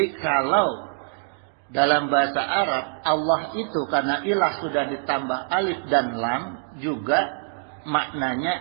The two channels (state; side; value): silent; left; digital silence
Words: kalau dalam bahasa Arab Allah itu karena ilah sudah ditambah alif dan lam juga